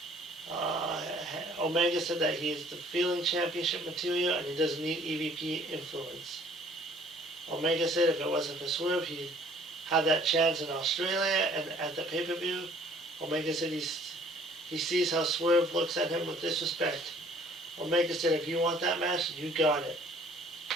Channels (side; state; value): both; normal; correlation 0.56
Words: Omega said that he is the feeling championship material and he doesn't need EVP influence. Omega said if it wasn't for Swerve, he'd have that chance in Australia and at the pay-per-view. Omega said he sees how Swerve looks at him with disrespect. Omega said if you want that match, you got it.